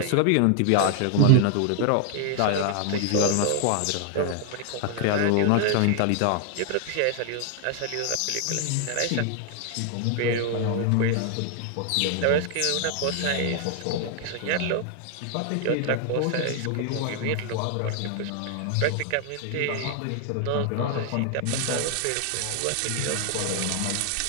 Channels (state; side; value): different; both; correlation 0.00